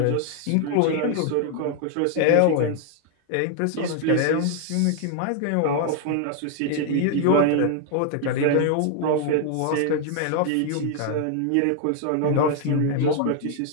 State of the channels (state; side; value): different; both; correlation 0.00